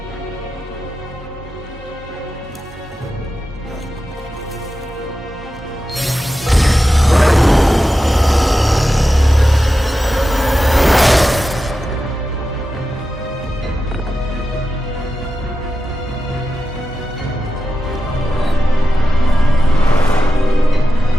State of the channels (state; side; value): normal; both; correlation 0.91